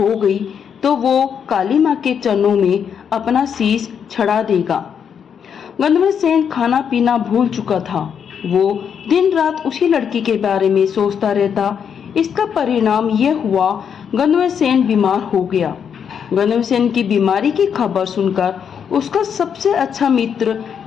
गई तो वो काली माँ के चरणों में अपना शीश चढ़ा देगा। गंधर्वसेन खाना पीना भूल चुका था। वो दिन रात उसी लड़की के बारे में सोचता रहता। इसका परिणाम यह हुआ, गंधर्वसेन बीमार हो गया। गंधर्वसेन की बीमारी की खबर सुनकर उसका सबसे अच्छा मित्र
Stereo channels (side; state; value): right; quieter; 7.6 dB